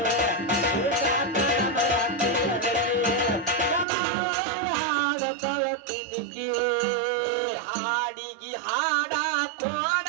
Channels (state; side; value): drops out; left; at 3.9 s